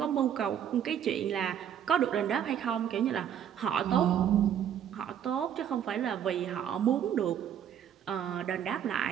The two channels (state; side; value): quieter; left; 9.3 dB